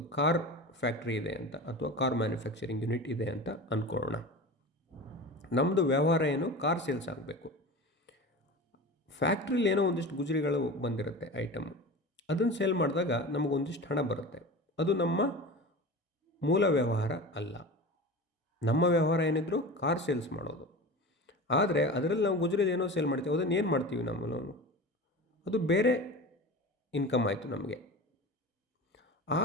ಕಾರ್ ಫ್ಯಾಕ್ಟ್ರಿ ಇದೆ ಅಂತ, ಅಥವಾ ಕಾರ್ ಮ್ಯಾನುಫ್ಯಾಕ್ಚರಿಂಗ್ ಯೂನಿಟ್ ಇದೆ ಅಂತ ಅಂದ್ಕೊಳ್ಳೋಣ. ನಮ್ಮದು ವ್ಯವಹಾರ ಏನು, ಕಾರ್ ಸೇಲ್ಸ್ ಆಗಬೇಕು. ಫ್ಯಾಕ್ಟ್ರಿಲಿ ಏನೋ ಒಂದಿಷ್ಟು ಗುಜರಿಗಳು ಬಂದಿರುತ್ತೆ, ಐಟಮು, ಅದನ್ನು ಸೇಲ್ ಮಾಡಿದಾಗ ನಮಗೊಂದಿಷ್ಟು ಹಣ ಬರುತ್ತೆ. ಅದು ನಮ್ಮ ಮೂಲ ವ್ಯವಹಾರ ಅಲ್ಲ. ನಮ್ಮ ವ್ಯವಹಾರ ಏನಿದ್ರು ಕಾರ್ ಸೇಲ್ಸ್ ಮಾಡೋದು. ಆದರೆ ಅದರಲ್ಲಿ ನಾವು ಗುಜರಿದು ಏನೋ ಸೇಲ್ ಮಾಡ್ತೀವಿ, ಅದನ್ನು ಏನು ಮಾಡ್ತೀವಿ ನಾವು, ಅದು ಬೇರೆ ಇನ್ಕಮ್ ಆಯಿತು ನಮಗೆ.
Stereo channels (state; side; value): normal; both; correlation 0.32